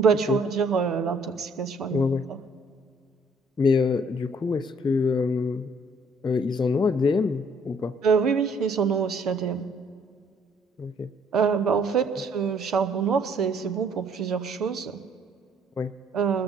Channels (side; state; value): both; normal; correlation 0.63